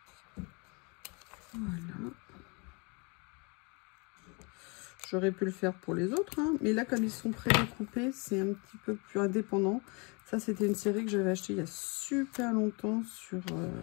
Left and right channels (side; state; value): right; quieter; 30.8 dB